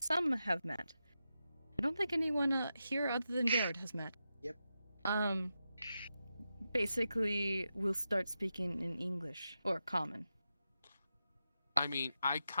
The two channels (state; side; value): inverted; both; correlation -0.89